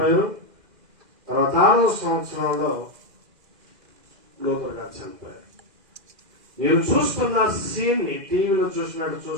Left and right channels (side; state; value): left; late; 2.0 ms